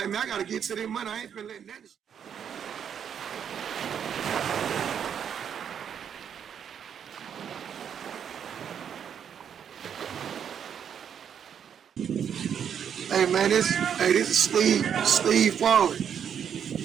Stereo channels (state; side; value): quieter; left; 8.2 dB